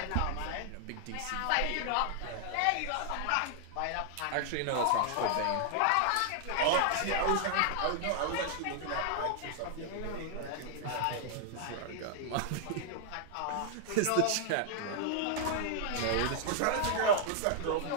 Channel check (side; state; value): both; different; correlation 0.00